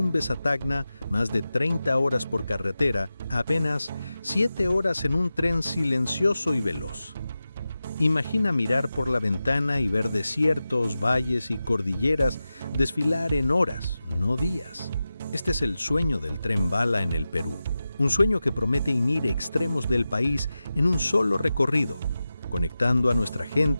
a Tacna, más de 30 horas por carretera, a apenas 7 horas en un tren silencioso y veloz. Imagina mirar por la ventana y ver desiertos, valles y cordilleras desfilar en horas, no días. Este es el sueño del tren bala en el Perú. Un sueño que promete unir extremos del país en un solo recorrido, conectando a nuestra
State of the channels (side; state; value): both; inverted; correlation -0.94